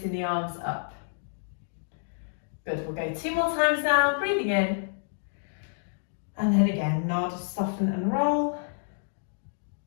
the arms up. Good, we'll go 2 more times now, breathing in. And then again, nod, soften and roll.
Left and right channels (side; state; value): right; silent; digital silence